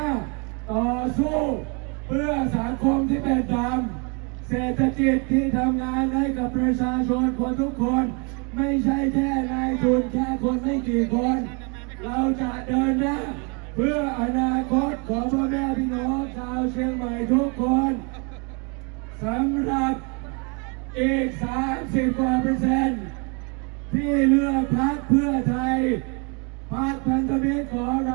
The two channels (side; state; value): left; quieter; 33.7 dB